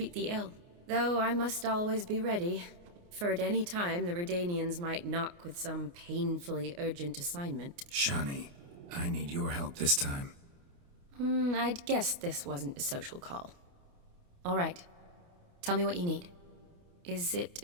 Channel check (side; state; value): left; late; 29 ms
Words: the ill. Though I must always be ready, for at any time the Redanians might knock with some painfully urgent assignment. Shani, I need your help this time. I'd guessed this wasn't a social call. All right. Tell me what you need. Is it